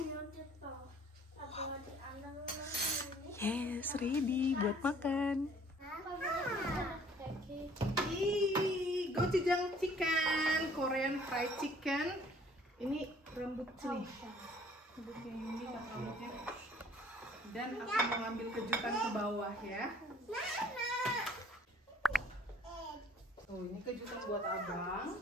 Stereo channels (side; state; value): both; normal; correlation 0.57